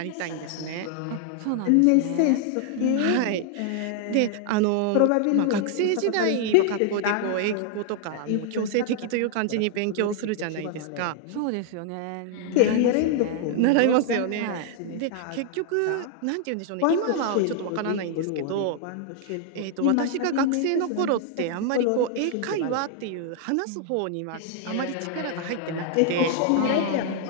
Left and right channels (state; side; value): different; both; correlation 0.00